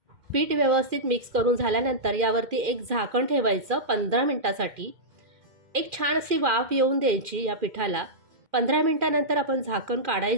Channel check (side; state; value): left; late; 2.4 ms